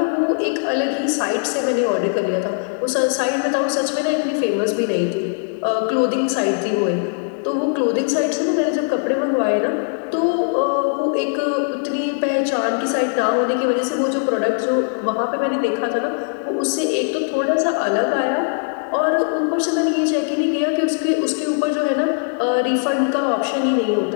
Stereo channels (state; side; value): silent; right; 66 dB below the other